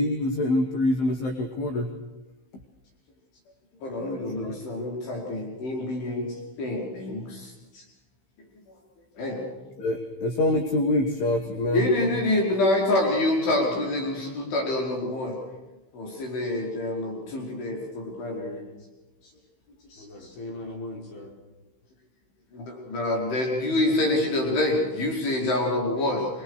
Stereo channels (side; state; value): right; late; 15 ms